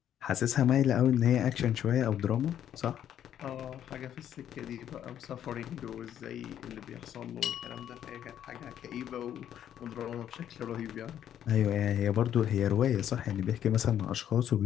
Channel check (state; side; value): quieter; right; 10.3 dB